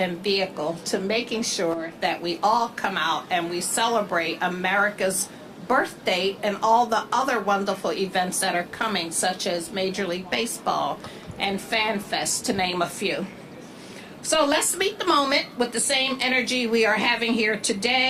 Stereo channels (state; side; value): identical; both; correlation 1.00